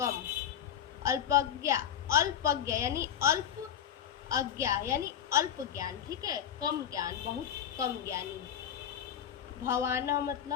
अल्पज्ञा, अल्पज्ञा यानी अल्प, अज्ञा यानी अल्प ज्ञान, ठीक है। कम ज्ञान, बहुत कम ज्ञानी। भवाना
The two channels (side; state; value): right; quieter; 9.5 dB